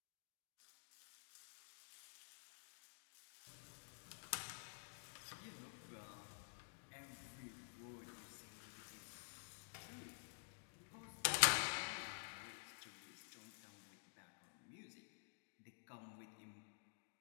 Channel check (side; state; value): right; silent; digital silence